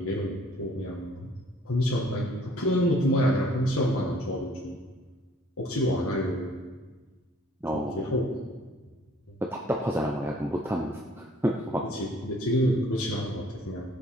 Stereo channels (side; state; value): both; normal; correlation 0.57